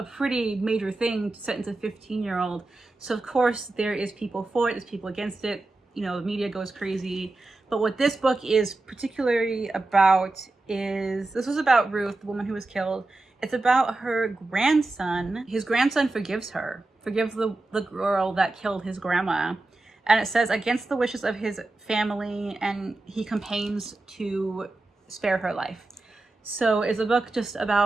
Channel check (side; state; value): left; quieter; 3.0 dB